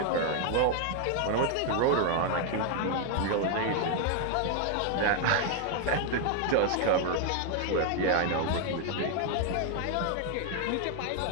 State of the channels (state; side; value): different; both; correlation 0.00